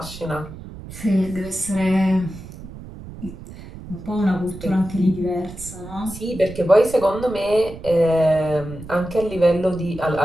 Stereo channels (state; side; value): noise; right; rumble, 14 dB below the sound